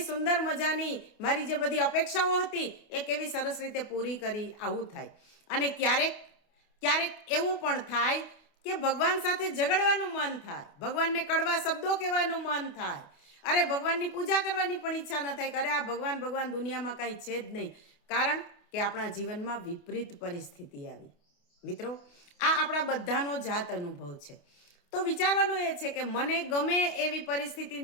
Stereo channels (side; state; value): right; late; 28 ms